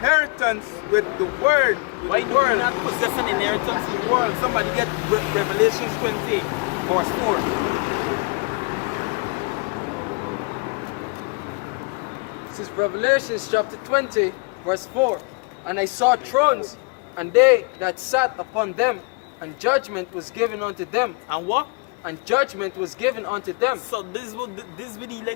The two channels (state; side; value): quieter; right; 29.4 dB